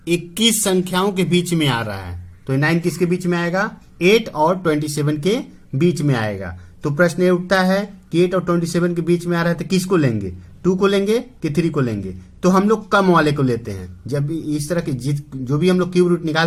21 संख्याओं के बीच में आ रहा है, तो 9 किसके बीच में आएगा 8 और 27 के बीच में आएगा। तो प्रश्न ये उठता है कि 8 और 27 के बीच में आ रहा है तो किसको लेंगे, 2 को लेंगे कि 3 को लेंगे। तो हम लोग कम वाले को लेते हैं। जब भी इस तरह के जो भी हम लोग क्यूब रूट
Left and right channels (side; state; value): both; identical; correlation 1.00